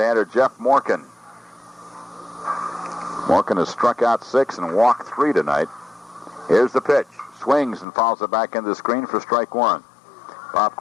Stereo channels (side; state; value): right; drops out; at 7.9 s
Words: Jeff Morgan. Morgan has struck out 6 and walked 3 tonight. Here's the pitch. Swings and fouls it back into the screen for strike 1. Bob